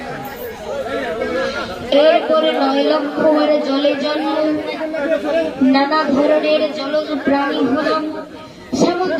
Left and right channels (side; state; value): both; identical; correlation 1.00